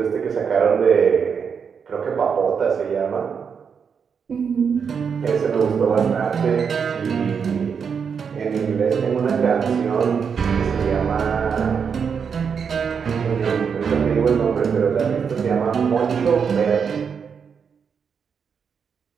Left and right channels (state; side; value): quieter; left; 6.5 dB